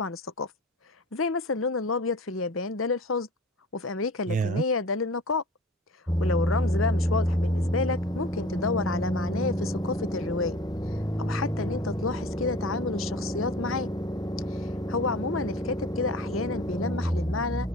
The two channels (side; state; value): both; normal; correlation 0.41